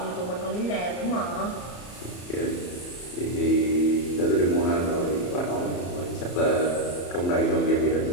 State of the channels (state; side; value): late; right; 34 ms